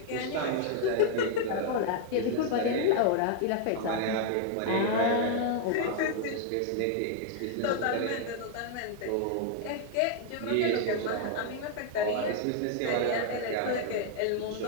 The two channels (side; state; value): both; different; correlation 0.00